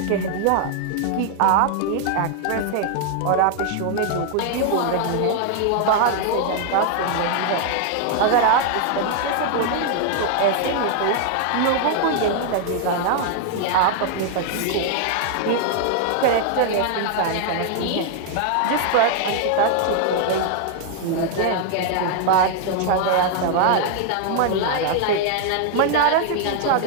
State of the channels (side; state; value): both; different; correlation 0.00